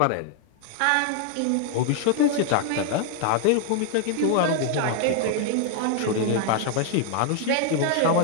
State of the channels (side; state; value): both; different; correlation 0.00